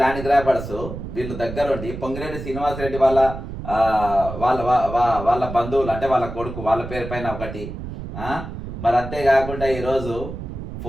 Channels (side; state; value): right; noise; rumble, 9 dB below the sound